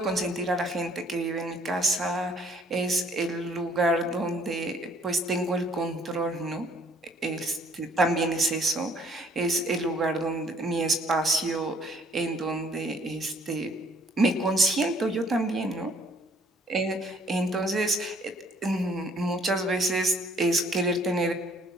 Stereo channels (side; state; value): both; normal; correlation 0.61